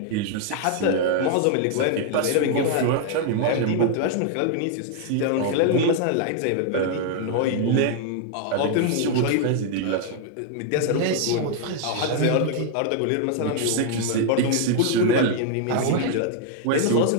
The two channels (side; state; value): both; different; correlation 0.00